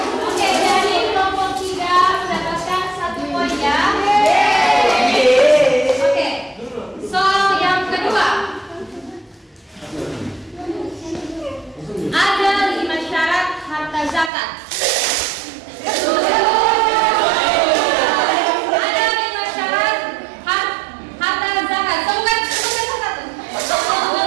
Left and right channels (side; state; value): left; drops out; at 14.3 s